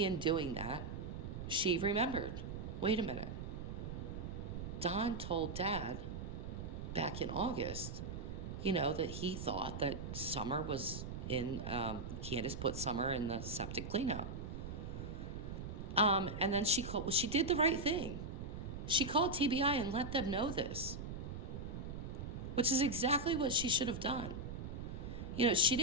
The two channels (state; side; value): noise; right; rumble, 6 dB below the sound